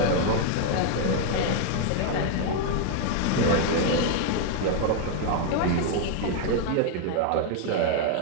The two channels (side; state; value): both; different; correlation 0.00